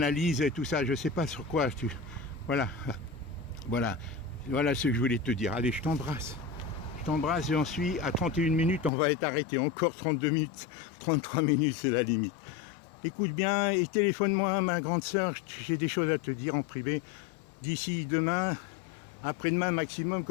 et tout ça. Je sais pas sur quoi tu. Voilà ce que je voulais te dire. Allez, je t'embrasse. Je t'embrasse, j'en suis à 31 minutes, on va être arrêté. Encore 32 minutes, 33 minutes, c'est la limite. Écoute bien et téléphone-moi, ma grande sœur, j'ai des choses à te dire en privé. D'ici demain, après-demain maximum,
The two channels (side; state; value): right; drops out; at 8.9 s